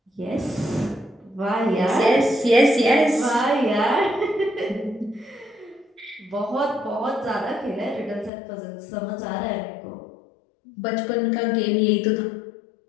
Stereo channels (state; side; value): drops out; right; at 8.3 s